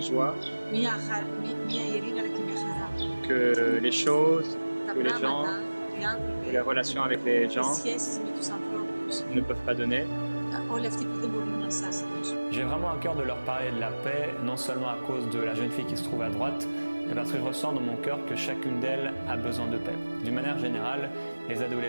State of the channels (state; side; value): inverted; both; correlation -1.00